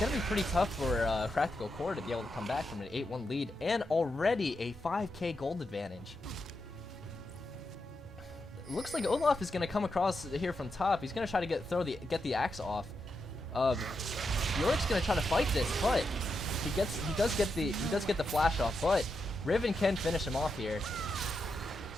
to be pretty tough for Practical Core to be able to come back from an 8-1 lead and already a 5k gold advantage. It looks like Olaf is going to come across here from top. He's going to try to get the axe off. Yorick's going to try to fight this, but he does get the flash off, but Riven can finish him off here.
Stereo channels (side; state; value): both; normal; correlation 0.85